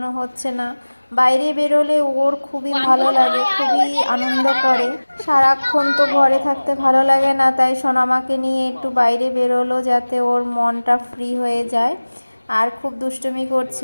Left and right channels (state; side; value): inverted; both; correlation -1.00